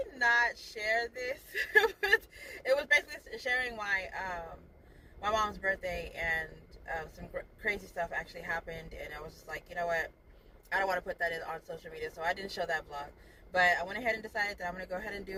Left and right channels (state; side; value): identical; both; correlation 1.00